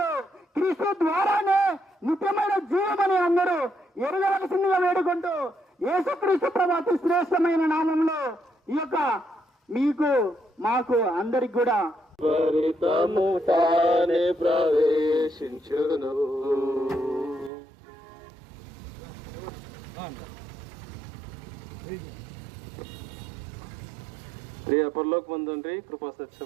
క్రీస్తు ద్వారానే నిత్యమైన జీవమని అందరూ ఎరగవలసిందిగా వేడుకుంటూ యేసుక్రీస్తు ప్రభు అతి శ్రేష్టమైన నామంలో ఈ యొక్క మీకు మాకు అందరికి కూడా పరితము తానే ప్రవేశించును. ప్రియ పరలోకమందు తండ్రి, కృపా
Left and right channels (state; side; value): drops out; left; at 17.5 s